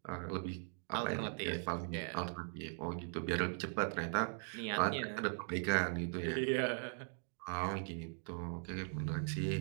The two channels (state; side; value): silent; left; 51 dB below the other